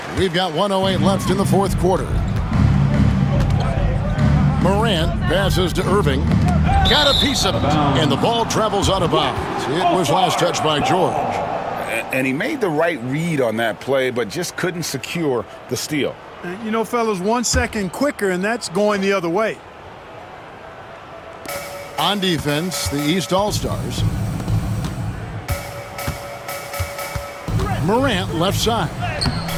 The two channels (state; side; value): identical; both; correlation 1.00